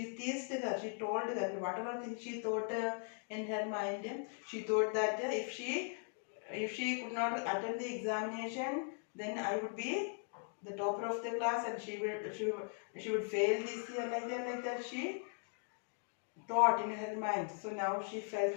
teased her. She told her whatever thing she thought in her mind. She thought that if she could not attend the examination, then I would be the topper of the class, and she would fail this year like that. She thought in her mind. So now she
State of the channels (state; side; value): silent; right; 52 dB below the other